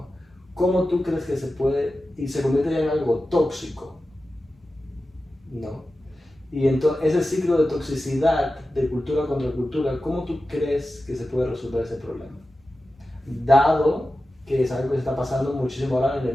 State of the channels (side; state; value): both; normal; correlation 0.93